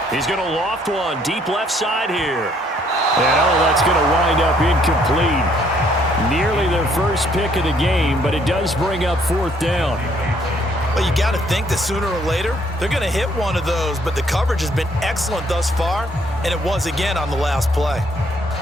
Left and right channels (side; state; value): both; normal; correlation 0.66